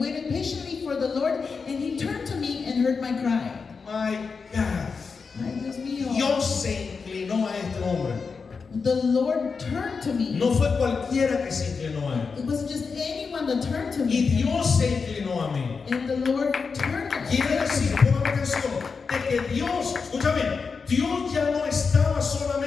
patiently for the Lord, and He turned to me and heard my cry. My God. Ay, Dios mío. Dios se inclinó a este hombre. The Lord turned to me. No fue cualquiera que se inclinó a él. It wasn't just anyone that turned to Y me. Dios se inclinó a mí. And the Lord turned to Quiere decir, me. pongan atención, de que Dios, escucha bien, Dios ya no estaba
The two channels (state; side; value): quieter; right; 5.1 dB